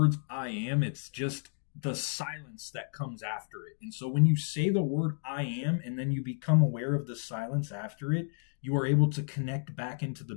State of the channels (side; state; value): right; silent; 57 dB below the other